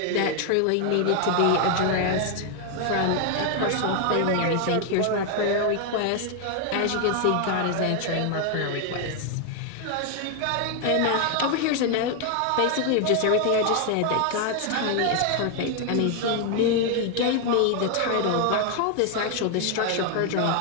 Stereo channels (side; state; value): both; different; correlation 0.01